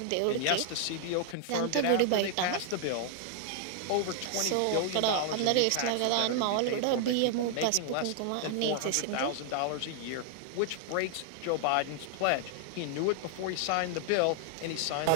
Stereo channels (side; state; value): both; different; correlation 0.00